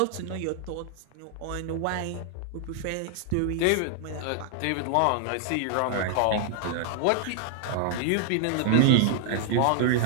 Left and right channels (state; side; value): different; both; correlation 0.00